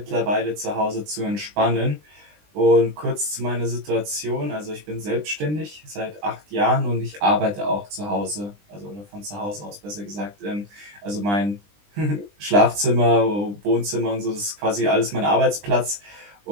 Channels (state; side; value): late; left; 20 ms